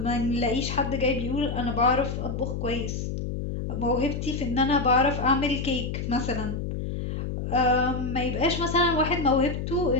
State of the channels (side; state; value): left; noise; hum, 4 dB below the sound